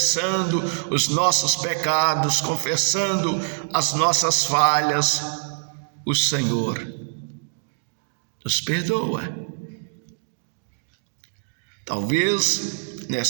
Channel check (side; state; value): left; silent; digital silence